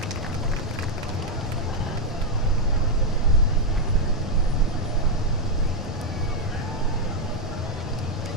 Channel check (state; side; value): normal; both; correlation 0.02